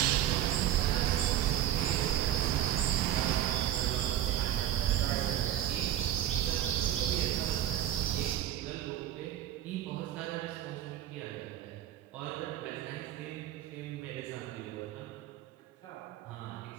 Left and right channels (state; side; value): quieter; left; 11.9 dB